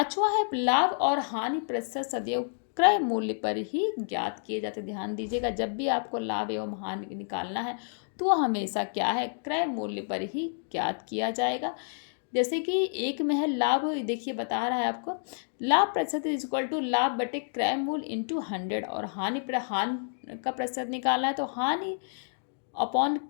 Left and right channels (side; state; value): right; silent; digital silence